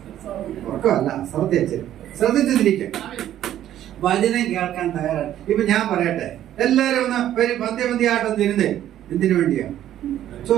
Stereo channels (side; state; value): left; quieter; 11.9 dB